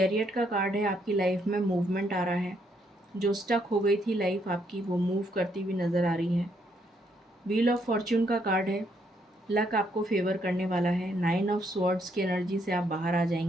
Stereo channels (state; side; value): normal; both; correlation 0.73